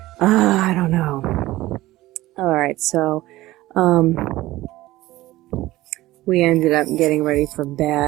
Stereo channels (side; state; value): left; quieter; 17.3 dB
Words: I don't know. All right. So, we ended up getting ready for